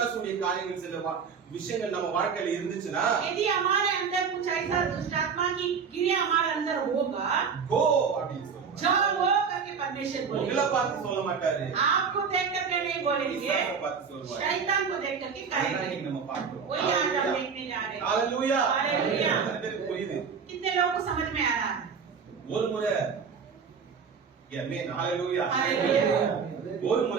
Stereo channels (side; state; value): left; quieter; 6.1 dB